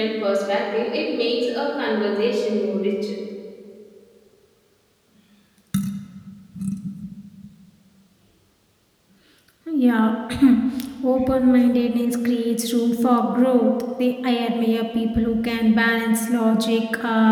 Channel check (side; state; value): both; identical; correlation 1.00